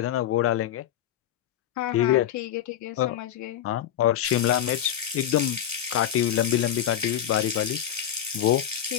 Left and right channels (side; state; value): right; quieter; 10.7 dB